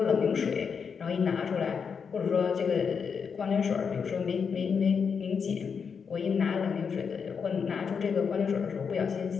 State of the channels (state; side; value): quieter; right; 6.2 dB